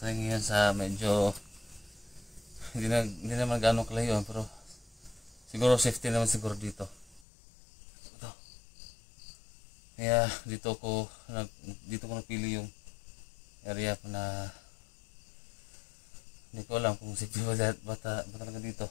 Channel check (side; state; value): right; drops out; at 7.2 s